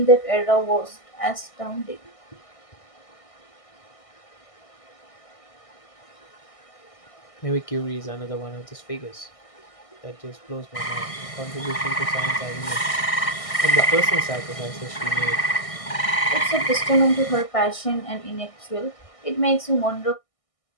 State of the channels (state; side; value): late; right; 1.6 ms